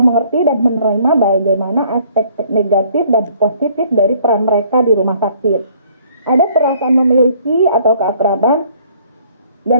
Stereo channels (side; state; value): both; inverted; correlation -0.60